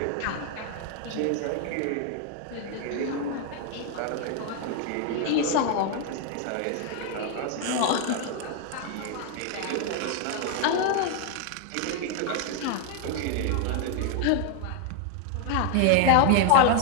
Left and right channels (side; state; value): both; different; correlation 0.00